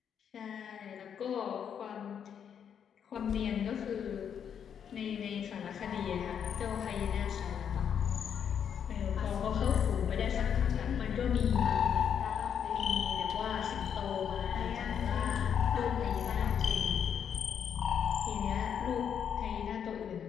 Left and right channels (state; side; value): quieter; right; 8.1 dB